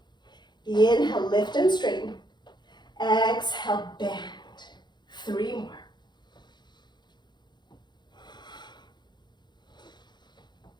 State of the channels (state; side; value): late; right; 0.21 ms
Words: Inhale, lift and straighten. Exhale, bend. 3 more.